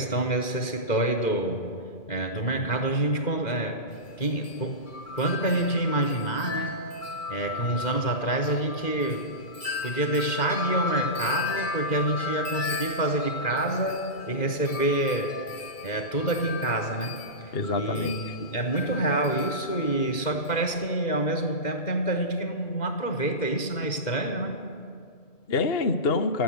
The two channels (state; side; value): late; right; 2.1 ms